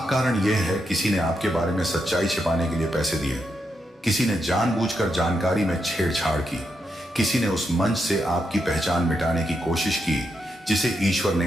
कारण यह है, किसी ने आपके बारे में सच्चाई छिपाने के लिए पैसे दिए, किसी ने जानबूझकर जानकारी में छेड़छाड़ की, किसी ने उस मंच से आपकी पहचान मिटाने की कोशिश की जिसे ईश्वर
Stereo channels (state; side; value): normal; both; correlation 0.83